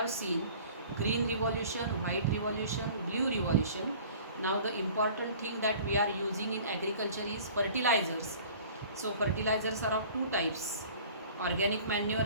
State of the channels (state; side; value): inverted; both; correlation -0.47